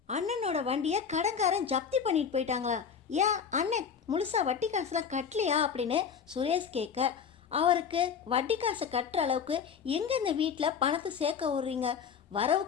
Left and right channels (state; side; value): quieter; right; 6.9 dB